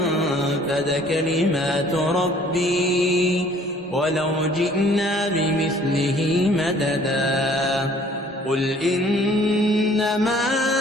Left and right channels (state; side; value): normal; both; correlation 0.56